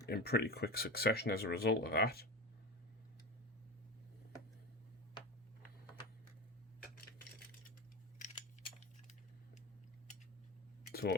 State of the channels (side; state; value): both; normal; correlation 0.26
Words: in pretty quick succession as a result of that. So